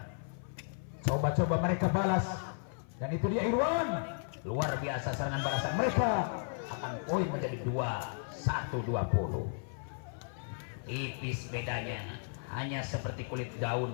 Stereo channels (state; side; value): silent; right; 55 dB below the other